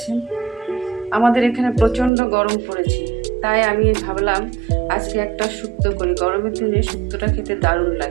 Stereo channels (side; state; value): left; drops out; at 2.1 s